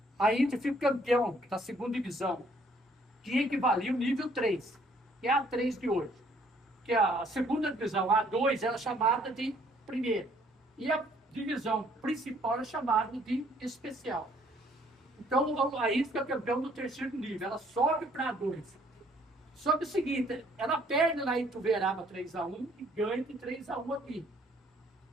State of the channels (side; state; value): both; normal; correlation 0.63